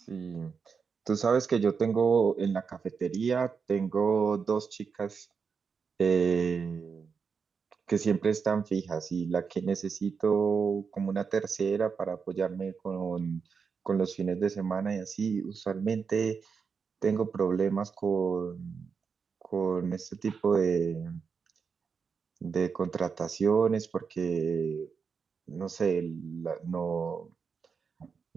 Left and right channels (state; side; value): quieter; left; 5.8 dB